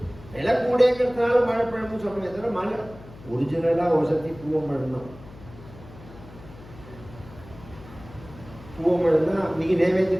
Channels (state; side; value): noise; left; hum, 19 dB below the sound